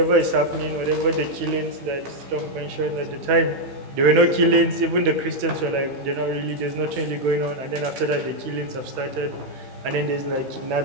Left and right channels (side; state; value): left; late; 16 ms